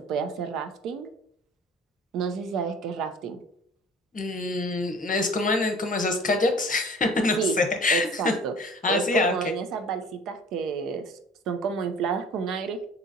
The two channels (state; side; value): normal; both; correlation 0.46